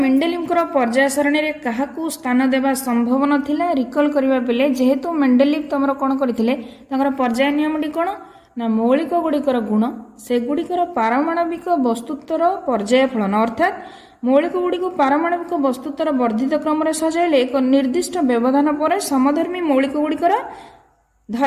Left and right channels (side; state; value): both; identical; correlation 1.00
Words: को पर्याय सारणी रे काहाकू स्थान देबा संभव नथिला रिकॉल करबा पिले जेहेतु मेंडेलिफ तमरो कोन करथिले तांकर पर्याय नियमटी कोन ना मौलिक गुड़िकर गुण से गुड़िकर पारमाणविक वस्तुत्वर पर्याय फलन अर्थात मौलिक गुड़िक पारमाणविक वस्तुत्वर वर्धित क्रम रे सजाइले एक निर्दिष्ट व्यवधान पर समधर्मी मौलिक गुड़िकर